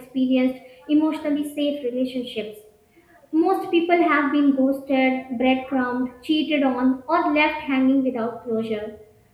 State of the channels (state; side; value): identical; both; correlation 1.00